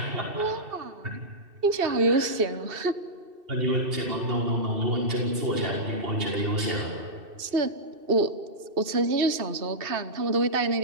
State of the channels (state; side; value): late; left; 2.7 ms